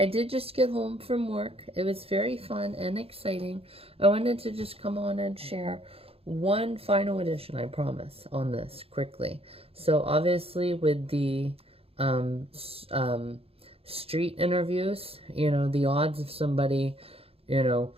did just get home from work. It was very fun and exciting. I wanted to just come on and share one final edition, I promise, on this quickly. So obviously with the street interviews, you know, the odds of somebody, you know,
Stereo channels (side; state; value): left; late; 0.28 ms